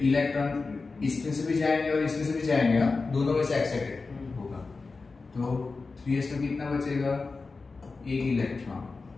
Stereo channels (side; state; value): right; quieter; 4.1 dB